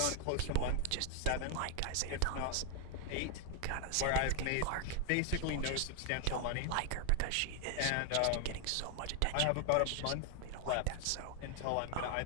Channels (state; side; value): different; both; correlation 0.00